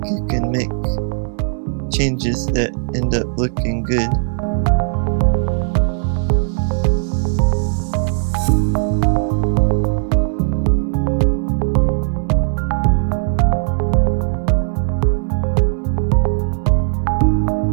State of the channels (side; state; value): left; silent; digital silence